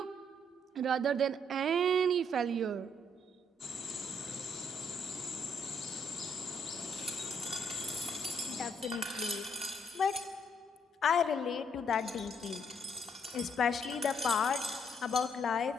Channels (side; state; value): both; normal; correlation 0.70